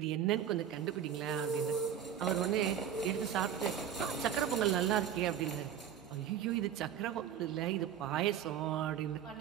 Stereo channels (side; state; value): left; quieter; 9.1 dB